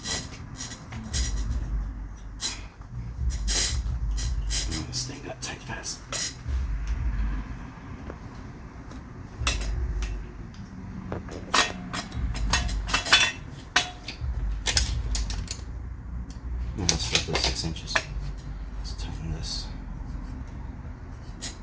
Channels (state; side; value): identical; both; correlation 1.00